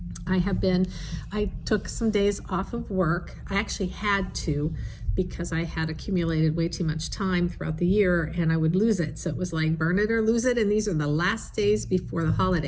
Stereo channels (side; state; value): both; identical; correlation 1.00